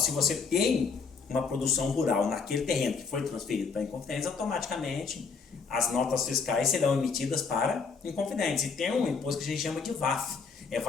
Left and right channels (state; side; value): quieter; right; 5.2 dB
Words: você tem uma produção rural naquele terreno que foi transferido para Inconfidentes, automaticamente as notas fiscais serão emitidas para Inconfidentes. E tem um imposto que a gente chama de VAF, é